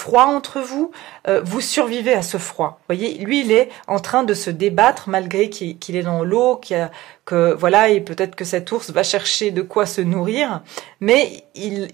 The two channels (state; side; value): quieter; left; 17.2 dB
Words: entre vous, vous survivez à ce froid. Vous voyez, lui, il est en train de se débattre malgré qu'il est dans l'eau, et peut-être que cet ours va chercher de quoi se nourrir, mais